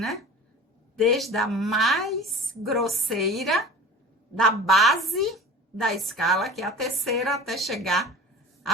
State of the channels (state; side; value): normal; both; correlation 0.37